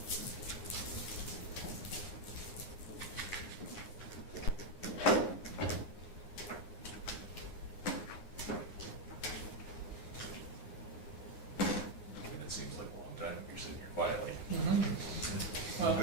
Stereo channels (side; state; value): right; late; 9.6 ms